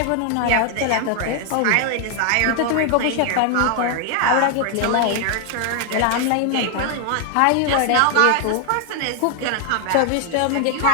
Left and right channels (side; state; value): both; different; correlation 0.00